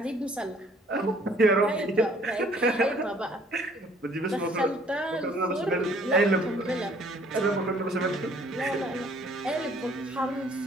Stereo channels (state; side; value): normal; both; correlation 0.59